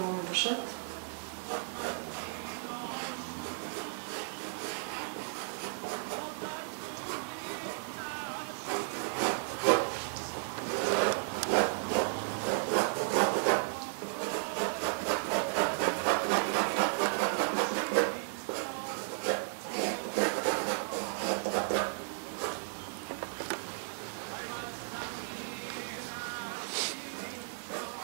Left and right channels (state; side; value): silent; left; 55 dB below the other